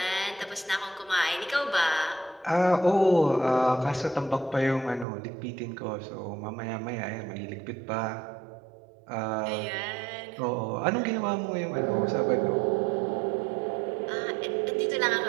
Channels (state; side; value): drops out; left; at 5.1 s